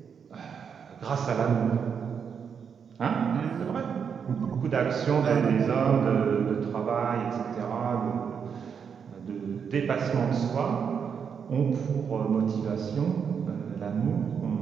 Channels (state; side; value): quieter; left; 6.9 dB